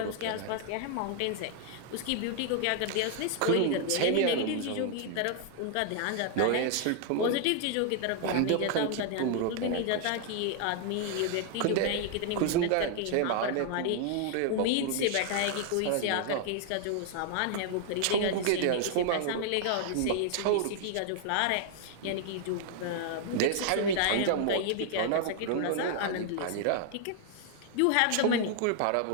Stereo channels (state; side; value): different; both; correlation 0.00